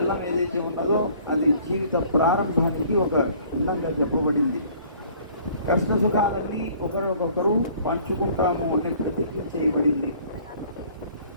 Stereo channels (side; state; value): both; inverted; correlation -0.54